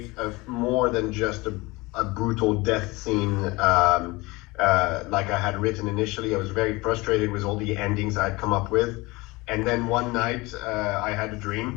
more than just a brutal death scene like I had written initially. I was very frustrated with all the endings I'd come up with. And then one night I had a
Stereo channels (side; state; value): right; quieter; 23.0 dB